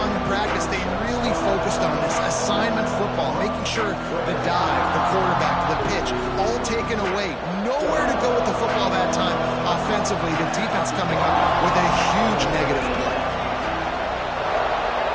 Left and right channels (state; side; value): identical; both; correlation 1.00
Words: in practice, they really focused on this assignment football, making sure the dive, the quarterback, the pitch, all taken away. Nowhere to go with the football that time. Offensively, the defense coming up with a huge negative play.